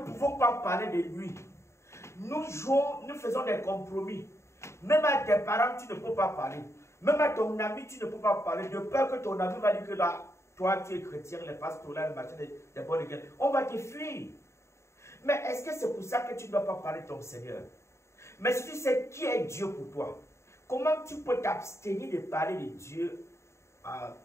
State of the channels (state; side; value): late; right; 0.13 ms